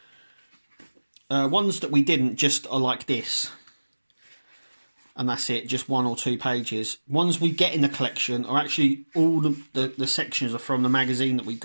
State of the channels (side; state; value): both; inverted; correlation -1.00